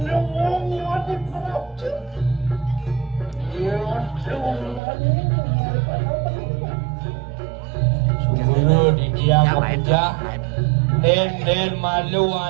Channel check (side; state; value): left; drops out; at 4.8 s